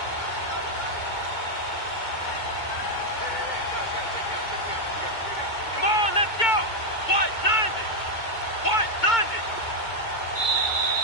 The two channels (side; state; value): right; late; 2.2 ms